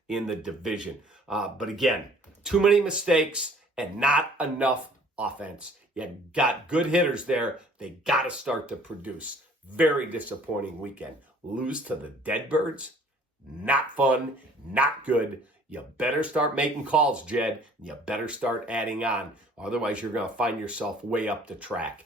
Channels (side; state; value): both; normal; correlation 0.55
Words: in the division. But again, too many mistakes and not enough offense. You got good hitters there. They got to start to produce. Very disappointing weekend. Lose to the Deadbirds? Not fun, not good. You better start making calls, Jed. You better start adding on. Otherwise, you're going to find yourself way up the